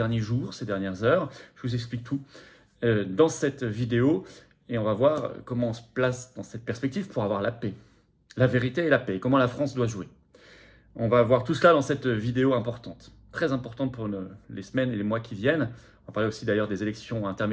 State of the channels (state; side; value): identical; both; correlation 1.00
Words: jours, ces dernières heures. Je vous explique tout dans cette vidéo et on va voir comment on se place dans cette perspective pour avoir la paix. La vérité et la paix, comment la France doit jouer. On va voir tout cela dans cette vidéo importante, très importante pour les semaines et les mois qui viennent. On va parler aussi d'ailleurs des élections